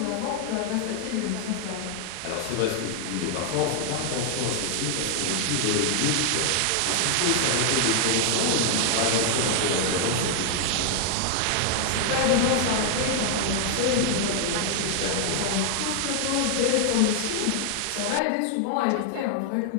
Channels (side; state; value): both; different; correlation 0.00